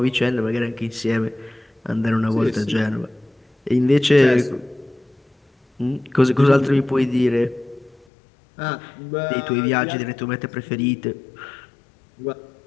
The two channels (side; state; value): right; drops out; at 8.1 s